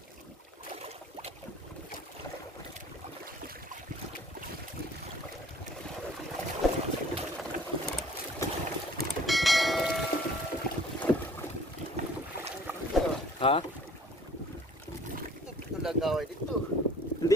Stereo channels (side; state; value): both; normal; correlation 0.52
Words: Ha? Ito lagaway dito.